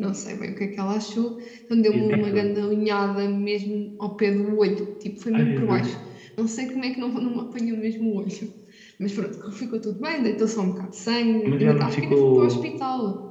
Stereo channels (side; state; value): both; identical; correlation 1.00